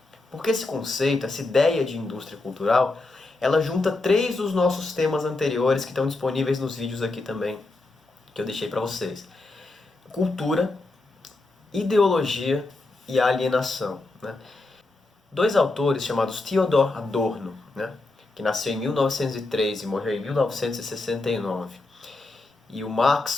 Porque esse conceito, essa ideia de indústria cultural, ela junta três dos nossos temas anteriores que estão disponíveis nos vídeos aqui também, que eu deixei para vocês. Cultura, ideologia e alienação, né? Dois autores chamados Theodor Adorno, né, que nasceu em 1903 e morreu em 1969, e o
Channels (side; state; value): right; quieter; 3.2 dB